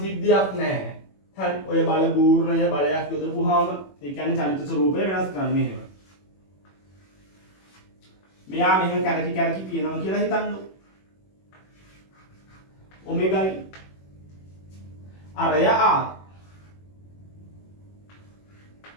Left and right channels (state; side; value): late; right; 21 ms